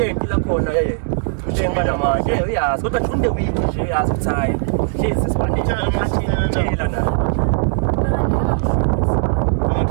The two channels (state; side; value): silent; left; 67 dB below the other